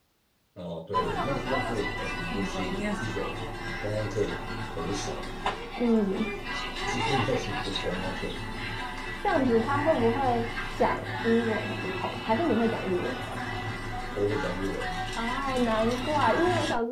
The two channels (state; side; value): identical; both; correlation 1.00